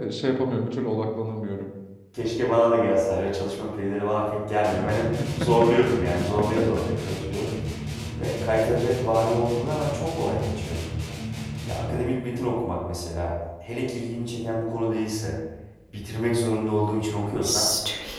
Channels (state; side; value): identical; both; correlation 1.00